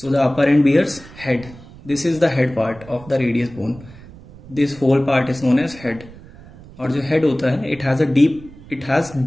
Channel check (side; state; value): right; noise; rumble, 19 dB below the sound